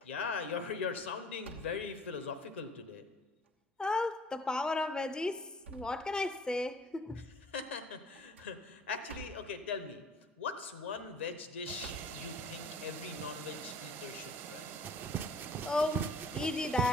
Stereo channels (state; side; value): normal; both; correlation 0.52